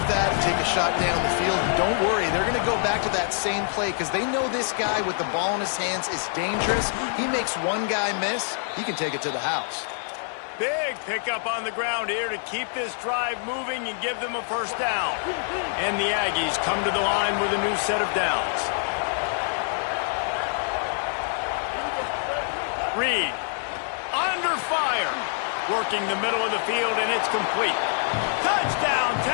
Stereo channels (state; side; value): silent; right; digital silence